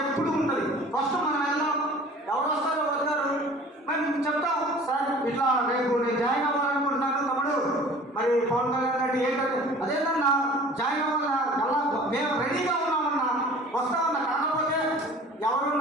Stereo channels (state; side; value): normal; both; correlation 0.46